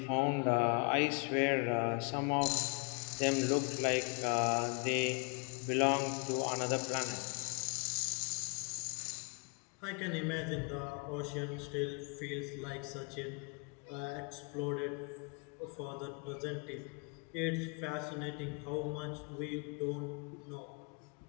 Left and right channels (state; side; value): quieter; right; 34.4 dB